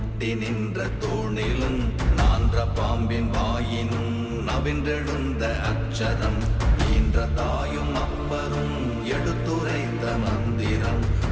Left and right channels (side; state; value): both; identical; correlation 1.00